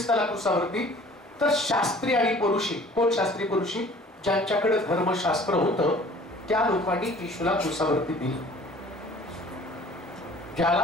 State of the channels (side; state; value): both; normal; correlation 0.50